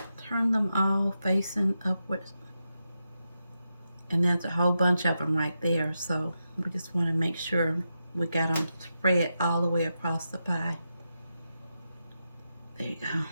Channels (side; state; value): both; inverted; correlation -0.88